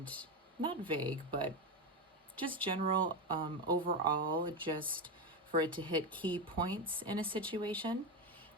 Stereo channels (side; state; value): both; normal; correlation 0.13